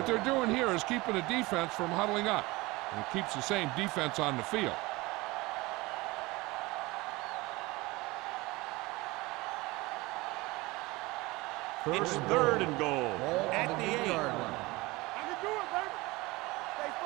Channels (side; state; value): left; quieter; 22.1 dB